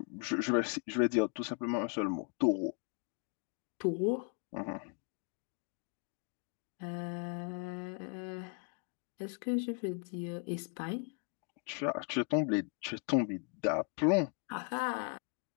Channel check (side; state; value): right; quieter; 39.5 dB